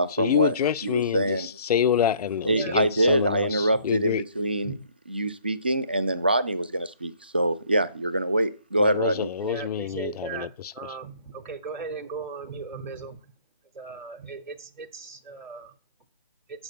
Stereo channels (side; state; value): both; inverted; correlation -0.59